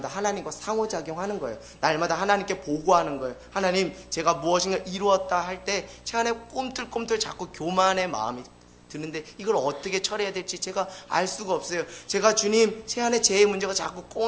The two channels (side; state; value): both; identical; correlation 1.00